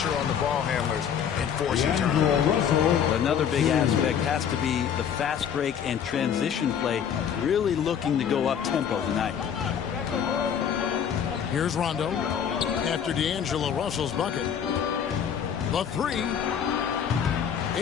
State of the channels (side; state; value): right; quieter; 8.3 dB